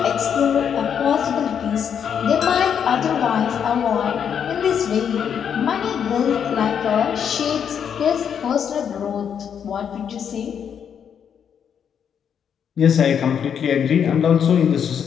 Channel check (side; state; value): right; quieter; 7.9 dB